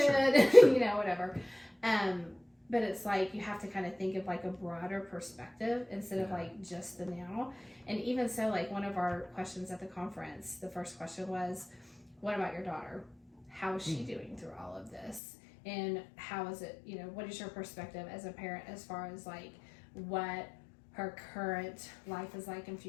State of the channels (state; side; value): drops out; right; at 15.2 s